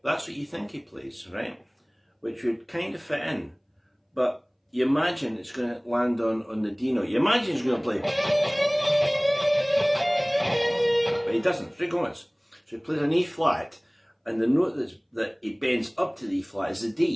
what you think he plays, right? Which would kind of fit in, but you imagine it's going to land on the D note. You imagine he's going to play, but he doesn't. Ray Gomez. So he plays an E flat, and the note that he bends up to the E flat is the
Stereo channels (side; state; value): both; identical; correlation 1.00